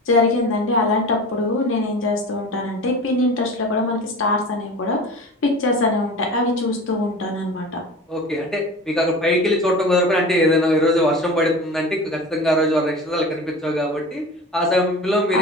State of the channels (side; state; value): both; normal; correlation 0.35